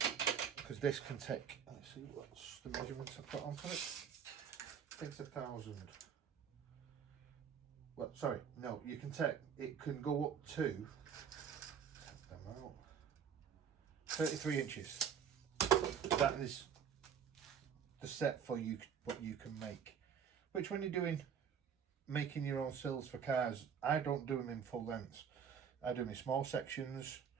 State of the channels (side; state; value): left; quieter; 7.6 dB